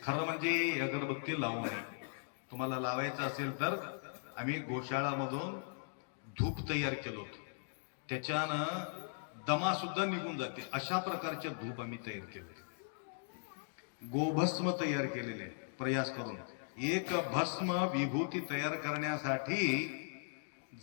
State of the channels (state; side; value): silent; right; digital silence